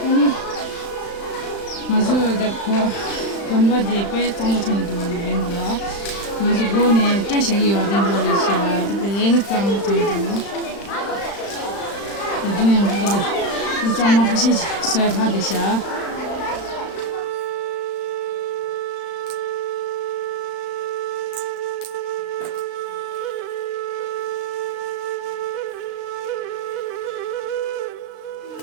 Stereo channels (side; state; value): right; late; 35 ms